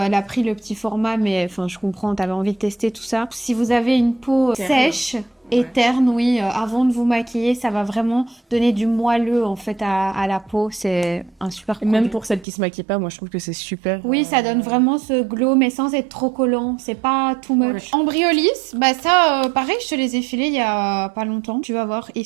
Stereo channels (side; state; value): left; drops out; at 12.5 s